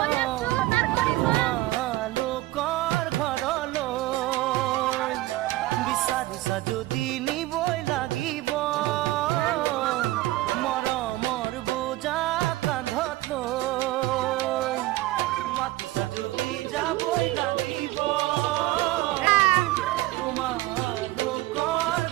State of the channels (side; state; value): left; quieter; 17.6 dB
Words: লোকৰ ঘৰলৈ বিচাৰিছা যদি নিবই লাগিব মৰমৰ বোজা কান্ধত লৈ মাতিছা যদি যাবই লাগিব তোমালোকৰ